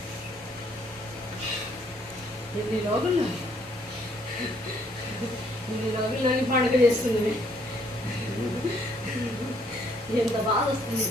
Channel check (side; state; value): both; normal; correlation 0.67